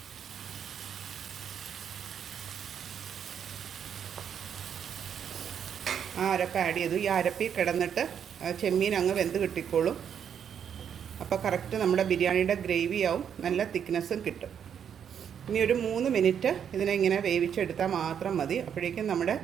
ആ അരപ്പ് ആഡ് ചെയ്തു. ഈ അരപ്പിൽ കിടന്നിട്ട് ചെമ്മീൻ അങ്ങ് വെന്ത് കിട്ടിക്കോളും. അപ്പോൾ കറക്റ്റ് നമ്മുടെ ബിരിയാണിയുടെ ഗ്രേവി ആവും, നല്ല തിക്നെസ്സും കിട്ടും. ഇനി ഒരു 3 മിനിറ്റ് ഇതിനെ ഇങ്ങനെ വേവിച്ചെടുത്താൽ മാത്രം മതി. അപ്പോഴേക്കും നമ്മുടെ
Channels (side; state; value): left; quieter; 8.2 dB